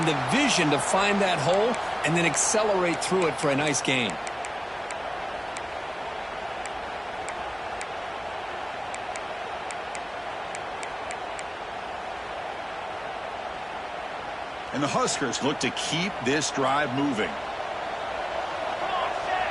the vision to find that hole and then accelerate through it for a nice gain. And the Huskers look to keep this drive moving.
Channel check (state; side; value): identical; both; correlation 1.00